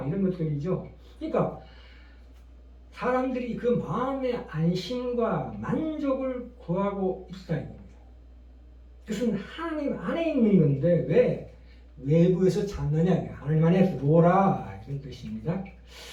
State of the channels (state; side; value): identical; both; correlation 1.00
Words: 이런 것들이죠. 그러니까 사람들이 그 마음의 안심과 만족을 구하고 있다 이겁니다. 그것은 하나님 안에 있는 건데 왜 외부에서 찾느냐? 하나님 안에 들어오라 이런 뜻입니다.